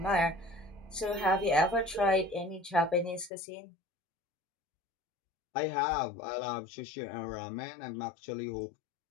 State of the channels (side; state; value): right; drops out; at 3.3 s